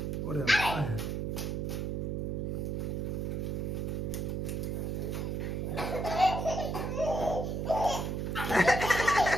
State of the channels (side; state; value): right; noise; hum, 1 dB below the sound